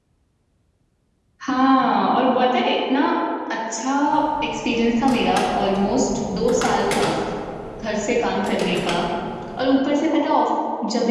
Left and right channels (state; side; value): identical; both; correlation 1.00